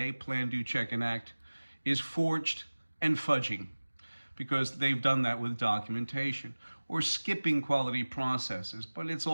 Plan, Do, Check, and Act, is forged and fudging, because they've done that with documentation, or skipping quality processes, but it's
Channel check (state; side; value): inverted; both; correlation -1.00